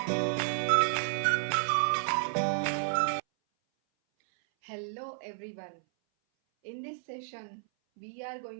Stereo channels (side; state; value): left; silent; 57 dB below the other